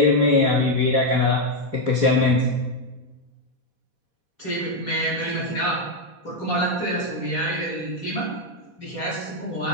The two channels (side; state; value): left; late; 4.1 ms